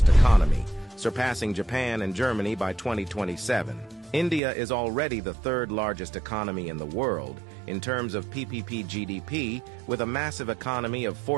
economy, surpassing Japan and Germany by 2027. India is already the 3rd largest economy in the world in terms of PPP GDP, with a massive economy of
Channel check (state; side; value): drops out; left; at 4.4 s